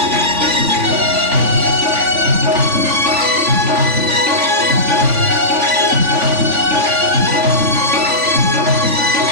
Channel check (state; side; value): late; left; 3.5 ms